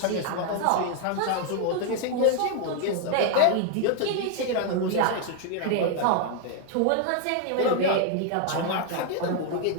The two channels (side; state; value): both; different; correlation 0.00